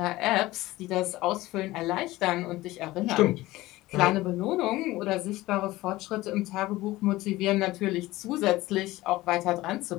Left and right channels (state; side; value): quieter; right; 18.2 dB